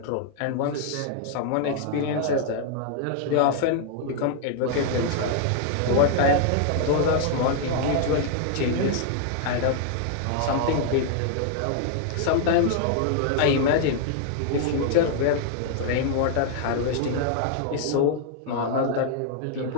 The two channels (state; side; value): different; both; correlation 0.00